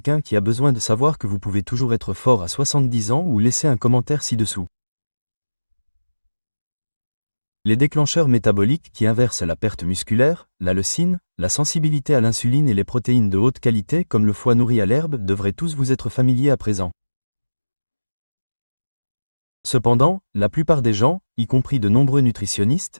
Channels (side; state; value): both; inverted; correlation -1.00